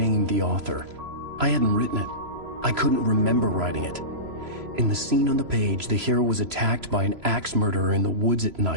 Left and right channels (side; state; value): left; late; 3.0 ms